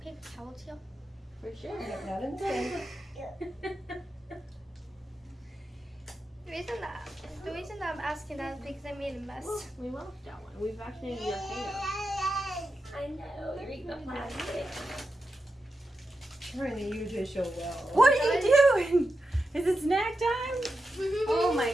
towels here? For sure. Not in the same. The reason that I'm asking that is because I made a mess. Well, we left that one. We vaccinated your hair. I know. You're eating the plastic. Charlie, you did so well. What are you doing? Is it snack time? Oh my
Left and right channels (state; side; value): normal; both; correlation 0.89